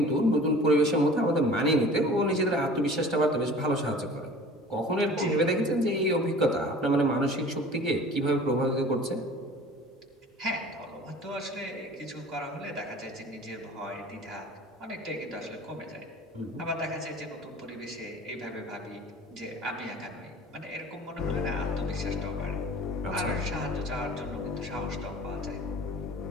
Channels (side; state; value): both; normal; correlation 0.44